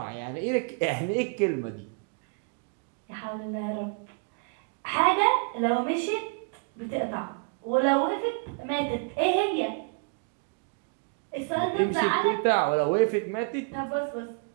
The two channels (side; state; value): left; quieter; 39.1 dB